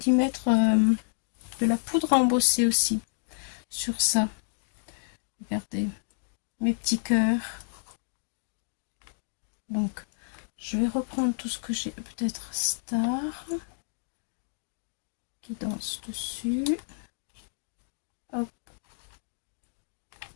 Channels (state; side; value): silent; right; digital silence